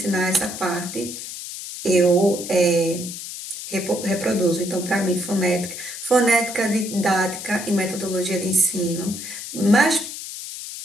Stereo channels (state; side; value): noise; left; hiss, 9 dB below the sound